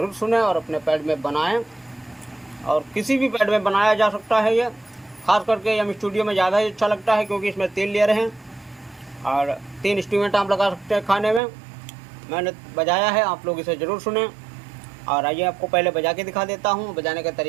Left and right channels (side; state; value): left; drops out; at 11.4 s